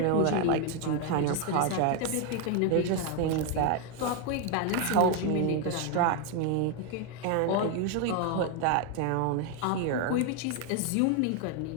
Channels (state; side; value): different; both; correlation 0.02